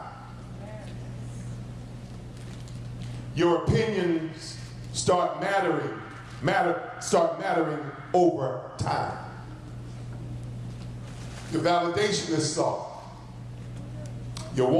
Your opinions start mattering over time. Your validation is sought. Your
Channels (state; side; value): identical; both; correlation 1.00